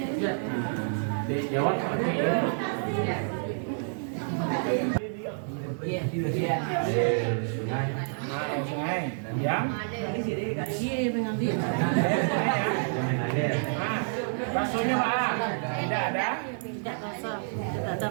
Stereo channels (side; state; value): left; silent; digital silence